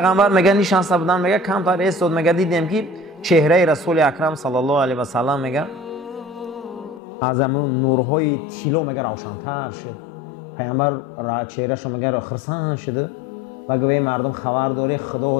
میگه نشسته بودن، میگه کم تا ایستاد، میگه دیدیم که چهره رسول اکرم صلی الله علیه و سلم میگه از همون نورهای طلا میگه روشن‌تر شد. پیغمبر چهره‌شو میگه خرسان شده و گویا مردم خبر داره خدا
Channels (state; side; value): drops out; right; at 7.0 s